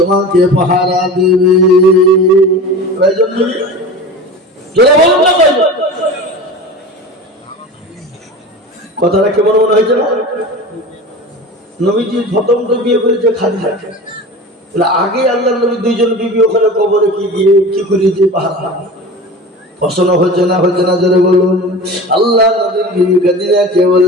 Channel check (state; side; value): normal; both; correlation 0.34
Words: পাহারা দেবে। কয়জন বিবি? জোরে বলুন না কয়জন? কথাটা কেমন মনে হয়েছে না? নবীজি প্রথম তো বিয়ে করেছে খাদিজা, আগে আল্লাহ নবী দুইজন বিবি ওখানে কবরে কি গিয়ে কি করিয়েছে পাহারা পছন্দ হচ্ছে না জোরে বলুন। আল্লাহ নবীর বিবি খাদিজাকে